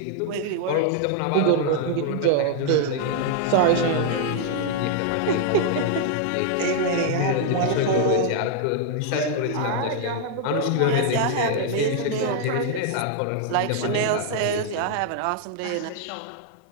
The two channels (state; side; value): different; both; correlation 0.00